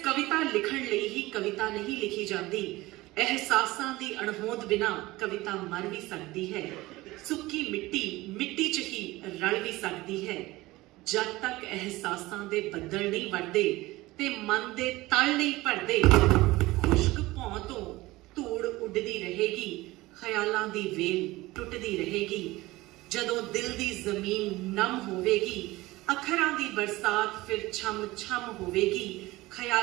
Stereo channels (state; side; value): quieter; left; 19.4 dB